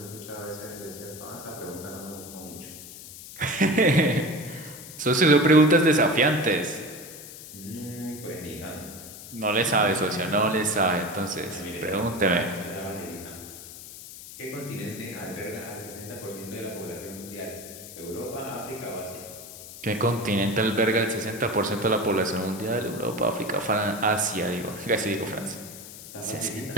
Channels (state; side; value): noise; left; hiss, 14 dB below the sound